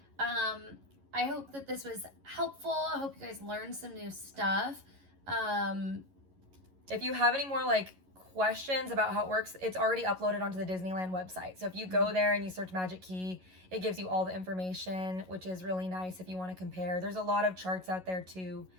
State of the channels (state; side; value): late; left; 11 ms